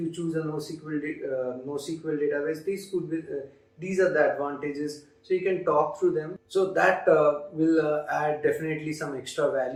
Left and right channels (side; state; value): both; identical; correlation 1.00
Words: choose a NoSQL database, these are the advantages. So you can talk through them. So that will add definitely some extra